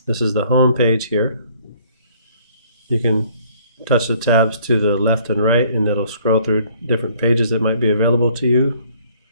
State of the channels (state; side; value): inverted; both; correlation -0.60